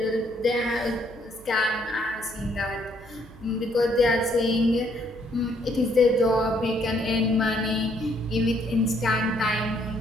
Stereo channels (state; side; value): noise; right; hum, 21 dB below the sound